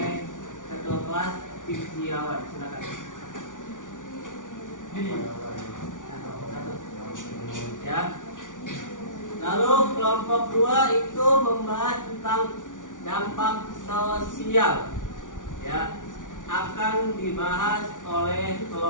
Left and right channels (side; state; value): right; late; 0.87 ms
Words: ketua kelas Pijiawan. Silakan. Ya. Lalu kelompok 2 itu membahas tentang dampak sosial. Ya, akan dibahas oleh